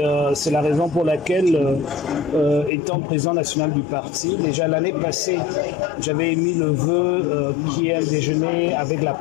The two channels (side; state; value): right; drops out; at 2.7 s